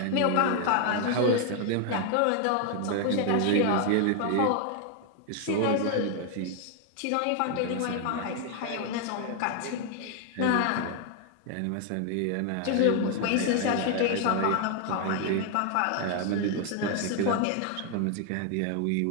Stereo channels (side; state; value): both; different; correlation 0.00